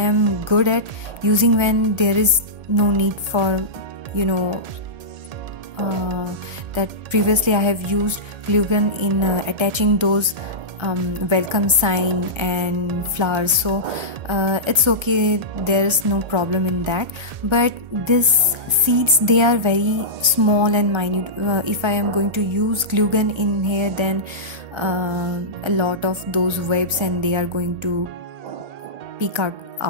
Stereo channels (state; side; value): late; left; 1.3 ms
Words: good at using when there is no need for that previously I have used glue gun in attaching those welcome sign and flowers, so it's okay, there's no problem in that. But these seeds, they are very small and minute. If I am going to use glue gun in here, then a lot of those webs, and they are going to peek